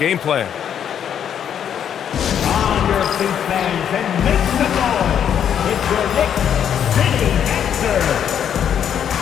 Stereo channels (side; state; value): right; quieter; 8.9 dB